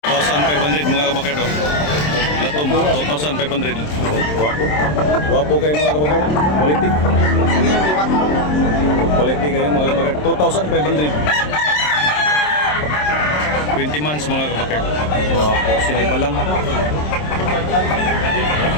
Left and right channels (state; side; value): late; right; 27 ms